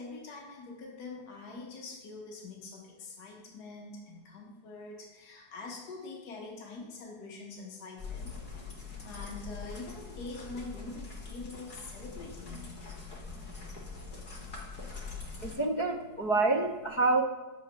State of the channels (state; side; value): late; right; 4.7 ms